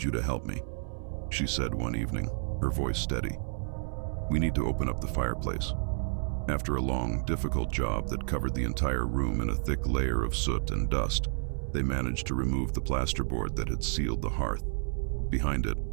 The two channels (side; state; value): left; silent; 57 dB below the other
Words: you to help me," she said one evening, her voice steady. "We need to open up the fireplace." After a long, difficult job that covered the entire room in a thick layer of soot and dust, they managed to remove the plasterboard that had sealed the hearth. Behind it,